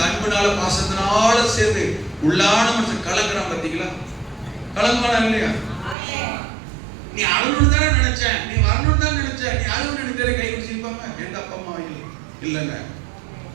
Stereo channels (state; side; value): drops out; left; at 6.0 s